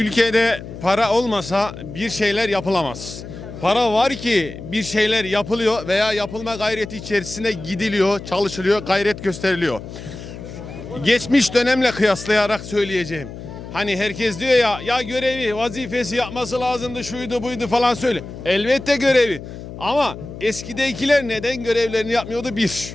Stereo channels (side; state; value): left; noise; hum, 12 dB below the sound